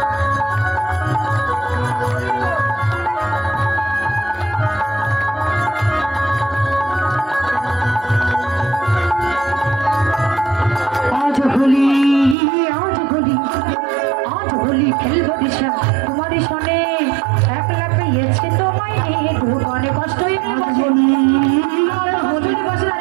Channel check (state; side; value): drops out; left; at 12.4 s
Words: খেলবো দিশা তোমারই শোনে একলা পেয়েছে তোমায় নিয়ে মনে কষ্টই